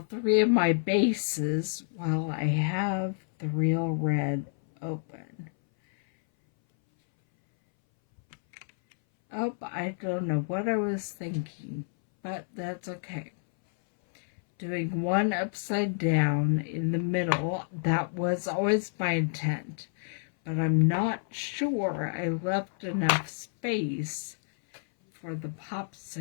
3 of my bases, while I have the Real Red open. Oh, I don't know what I was thinking, but that's okay. Doing 1 upside down in the middle, that was always my intent, but I'm not sure I left enough space for the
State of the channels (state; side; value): silent; right; 58 dB below the other